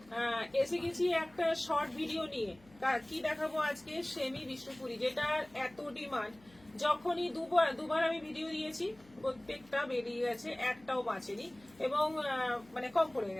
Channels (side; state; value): left; noise; hum, 27 dB below the sound